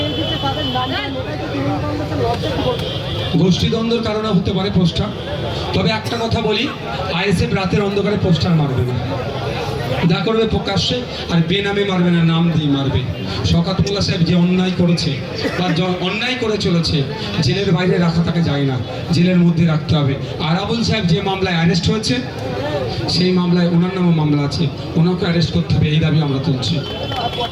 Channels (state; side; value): identical; both; correlation 1.00